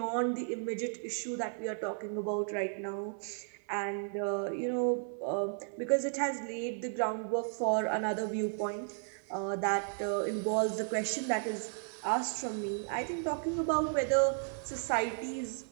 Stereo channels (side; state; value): left; silent; 55 dB below the other